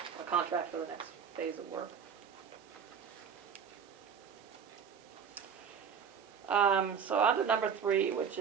a contract for the next phase of work. So on to number 3, which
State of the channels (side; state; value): left; quieter; 7.0 dB